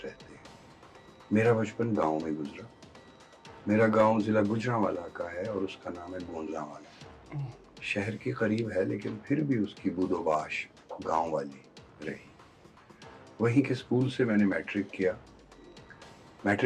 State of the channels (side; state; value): both; identical; correlation 1.00